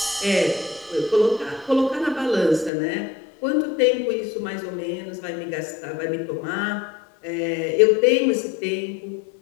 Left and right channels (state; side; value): drops out; right; at 2.7 s